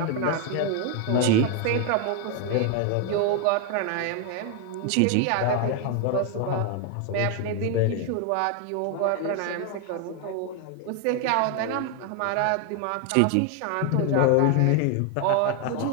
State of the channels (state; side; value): different; both; correlation 0.01